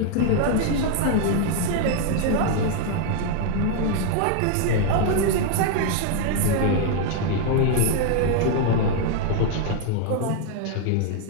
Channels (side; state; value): both; different; correlation 0.01